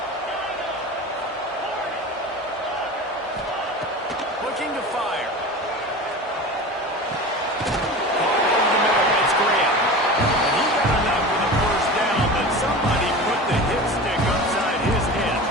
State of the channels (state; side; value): normal; both; correlation 0.32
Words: Looking to fire.